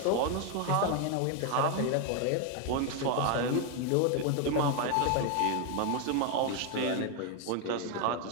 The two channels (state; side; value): different; both; correlation 0.01